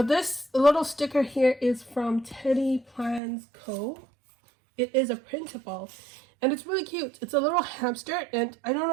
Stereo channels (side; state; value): left; drops out; at 3.2 s